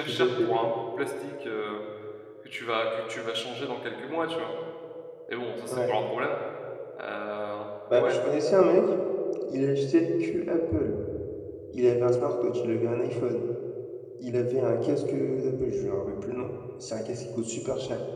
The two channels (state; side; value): identical; both; correlation 1.00